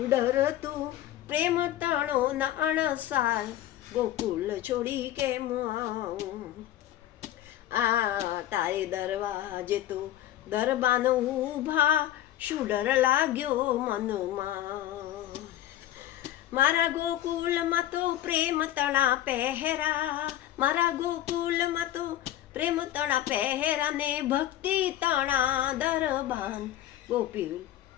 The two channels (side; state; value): right; quieter; 12.9 dB